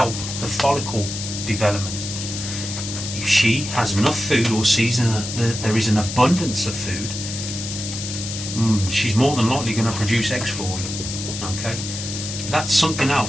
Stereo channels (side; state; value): left; noise; hiss, 7 dB below the sound